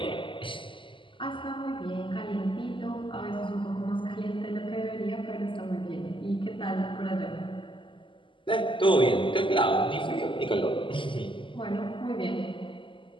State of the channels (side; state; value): right; late; 0.25 ms